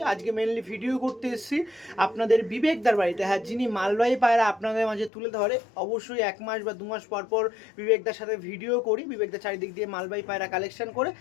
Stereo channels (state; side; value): drops out; right; at 5.1 s